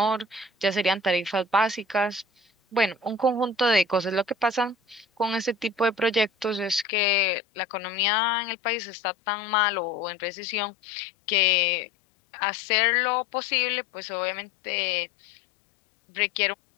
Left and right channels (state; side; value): drops out; right; at 6.9 s